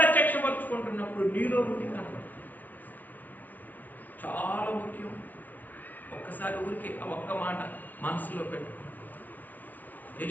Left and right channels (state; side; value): late; right; 0.085 ms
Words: నీలో ఉండి కనపడు. చాలా ముఖ్యం. ఒక్కసారి ఊరికి ఒక్క మాట మనసులో పెట్టుకో.